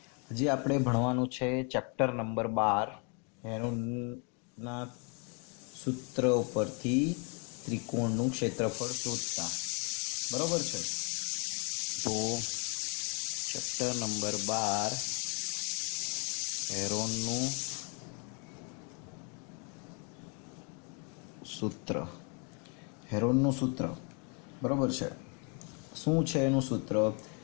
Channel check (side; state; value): right; quieter; 35.8 dB